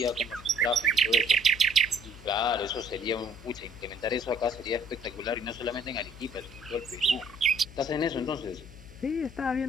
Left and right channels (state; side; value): noise; left; hum, 18 dB below the sound